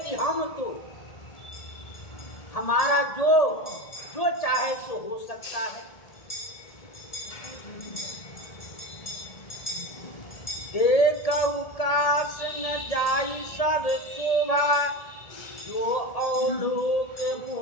हम तो हमारा जो चाहे सो हो सकता है। देखऊ काश न जाई सब शोभा, जो अवलोक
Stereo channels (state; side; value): late; right; 1.8 ms